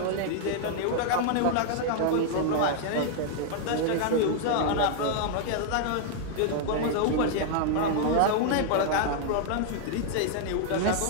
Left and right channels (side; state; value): both; different; correlation 0.00